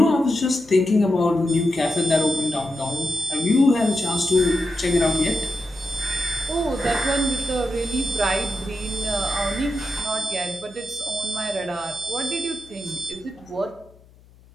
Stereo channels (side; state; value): left; noise; hum, 27 dB below the sound